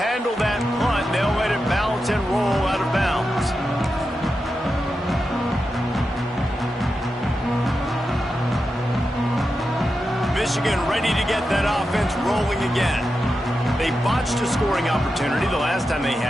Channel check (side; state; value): both; normal; correlation 0.89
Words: that punt. They'll let it bounce and roll out of bounds. Michigan ready to get that offense rolling again. They botched a scoring opportunity the last time they